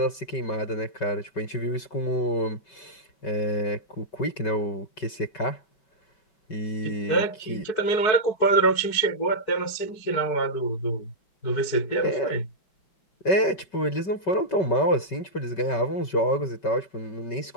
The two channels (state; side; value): late; right; 5.2 ms